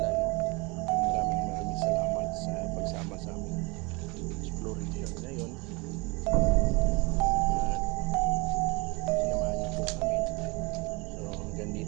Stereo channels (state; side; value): quieter; left; 27.1 dB